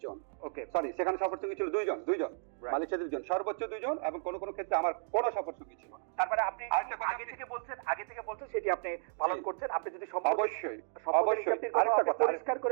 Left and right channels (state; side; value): silent; left; digital silence